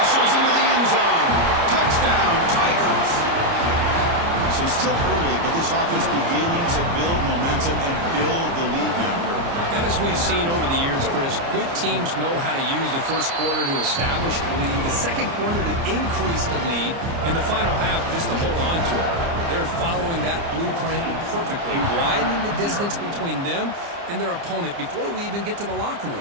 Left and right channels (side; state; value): left; late; 29 ms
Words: into the end zone. Touchdown, Tigers. So it's still early, but this offense beginning to build momentum and build the lead now, Kurt. As we've seen over the years, Chris, good teams know how to use the first quarter to establish the lead, the second quarter to increase the lead, and the final half just to hold on to it. They're following that blueprint perfectly, widening the distance between them and their opponent before we even get to the locker